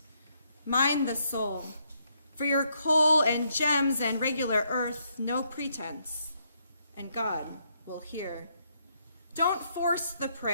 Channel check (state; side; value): inverted; both; correlation -0.75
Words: Mind the soul. For your coal and gems and regular earth, no pretense, and God will hear. Don't force the